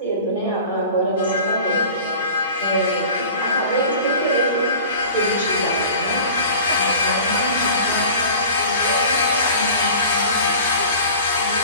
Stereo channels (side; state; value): both; inverted; correlation -0.40